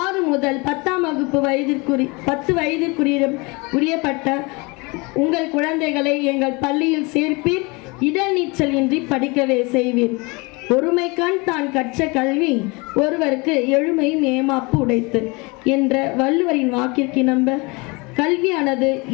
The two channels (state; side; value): quieter; right; 27.2 dB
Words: முதல் 10ஆம் வகுப்பு 10 வயதிற்குரியப்பட்ட உங்கள் குழந்தைகளை எங்கள் பள்ளியில் சேர்ப்பீர். இடநீச்சல் இன்றி படிக்கவே செய்வீர். ஒருமைக்கான் தான் கற்ற கல்வி ஒருவருக்கு எழுமையும் ஏமாப்பு உடைத்து என்ற வள்ளுவரின் வாக்கிற்கு நம்ப கல்வியானது